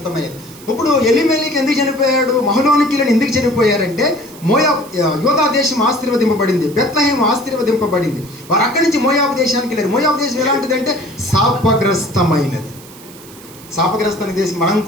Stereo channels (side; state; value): right; noise; hiss, 20 dB below the sound